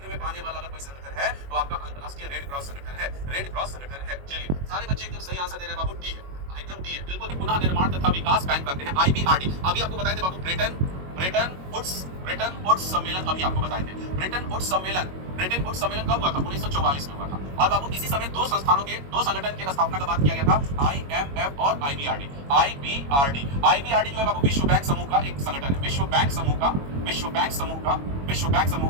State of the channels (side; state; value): left; late; 22 ms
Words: में पाने वाला अगर कोई संगठन है तो आपका अंतरराष्ट्रीय रेड क्रॉस संगठन है। चलिए, सारे बच्चे एकदम सही आंसर दे रहे हैं बाबू, डी है, एकदम डी है, बिल्कुल। पुनः निर्माण तथा विकास बैंक करते हैं, IBRD। अभी आपको बताए थे बाबू ब्रेटन वुड्स सम्मेलन, अभी आपको बताए थे। ब्रेटन वुड्स सम्मेलन कब हुआ था? 1944 में हुआ था। और बाबू इसी समय दो संगठन की स्थापना का बात किया गया था, IMF और IBRD। IBRD जो है बाबू विश्व बैंक समूह का एक संगठन है, विश्व बैंक समूह का